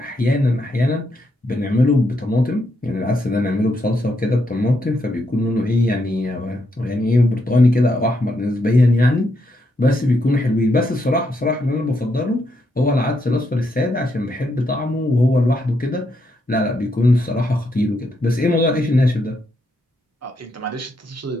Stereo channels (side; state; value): both; normal; correlation 0.79